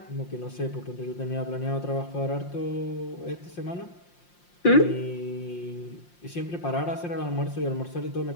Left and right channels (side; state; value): right; late; 5.7 ms